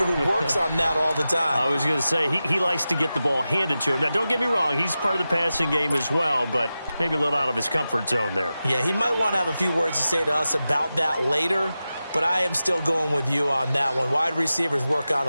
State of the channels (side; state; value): both; inverted; correlation -0.93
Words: who works on that all the time. I was going to say, he likes to get the ball handed to him. Now, don't get me wrong, he's part of the passing game as well, but maybe a little out of his comfort zone there. Yeah, he might want to have a few words to say to us about that later, but I am still going with you on that one. Wide receivers work on